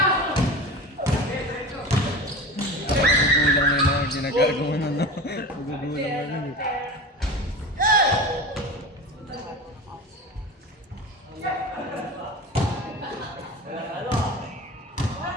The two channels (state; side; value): normal; both; correlation 0.31